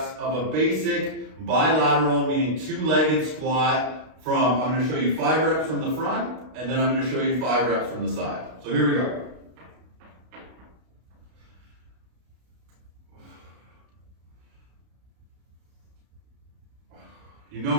of a basic bilateral, meaning two-legged squat I'm going to show you 5 reps from the front, and then I'm going to show you 5 reps from the side. So here we go. You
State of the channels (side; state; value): left; late; 32 ms